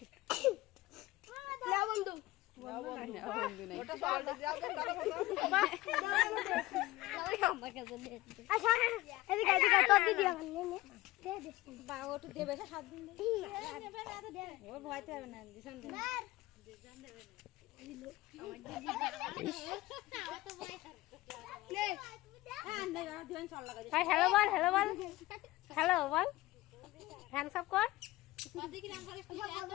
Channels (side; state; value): right; quieter; 18.6 dB